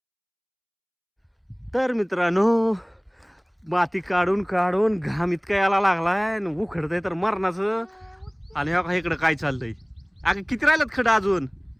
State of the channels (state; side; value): identical; both; correlation 1.00